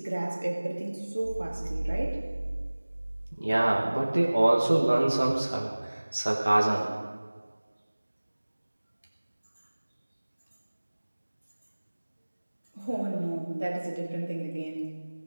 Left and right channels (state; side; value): inverted; both; correlation -1.00